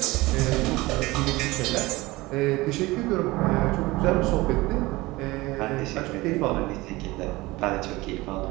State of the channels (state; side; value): quieter; left; 20.7 dB